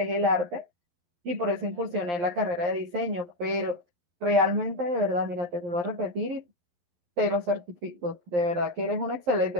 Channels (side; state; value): left; late; 11 ms